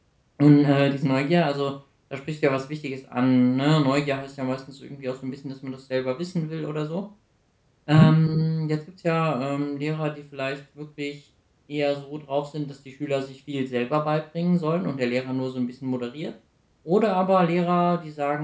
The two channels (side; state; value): both; identical; correlation 1.00